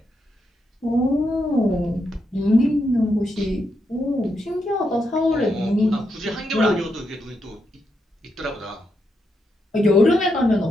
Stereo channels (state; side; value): normal; both; correlation 0.82